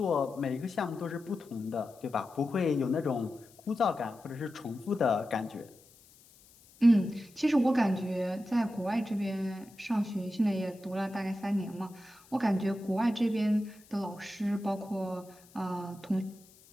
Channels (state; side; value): noise; left; hiss, 26 dB below the sound